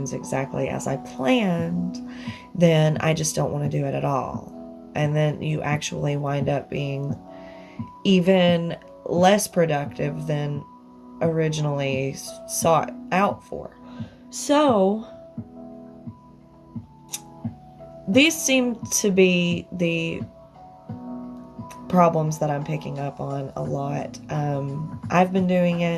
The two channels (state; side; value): identical; both; correlation 1.00